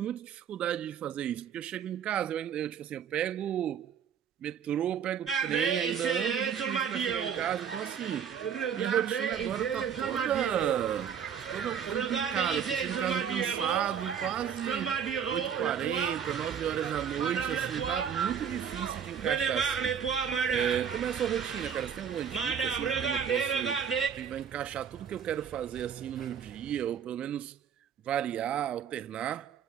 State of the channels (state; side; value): quieter; left; 7.9 dB